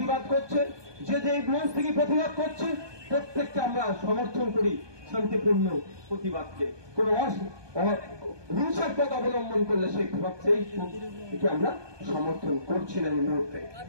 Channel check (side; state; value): left; late; 1.2 ms